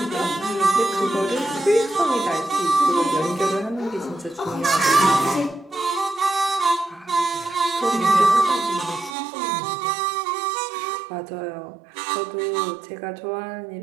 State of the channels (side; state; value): left; drops out; at 9.2 s